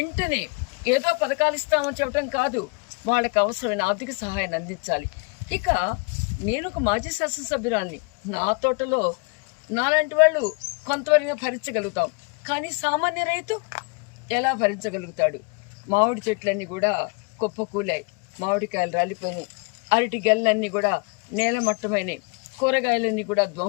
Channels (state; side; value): quieter; right; 33.2 dB